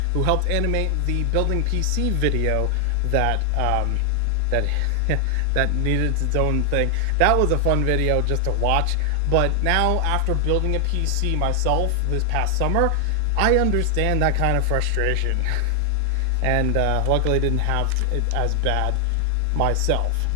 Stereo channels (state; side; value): different; both; correlation 0.00